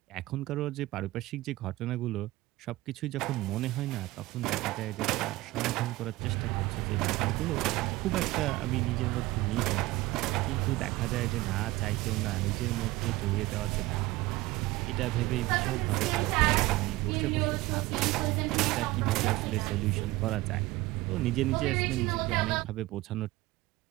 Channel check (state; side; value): quieter; left; 19.1 dB